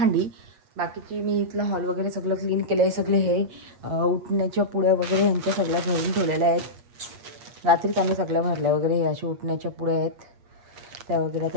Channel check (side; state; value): left; late; 8.4 ms